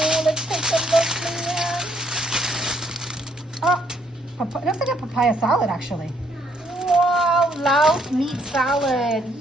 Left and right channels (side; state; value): both; normal; correlation 0.70